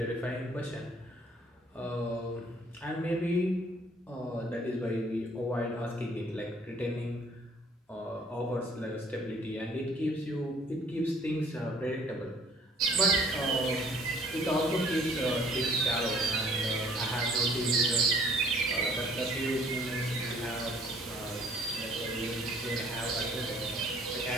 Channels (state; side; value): normal; both; correlation 0.58